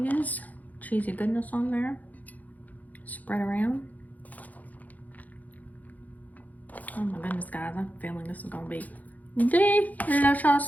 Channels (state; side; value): late; right; 0.079 ms